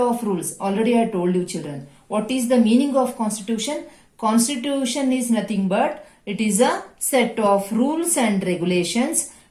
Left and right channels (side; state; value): both; identical; correlation 1.00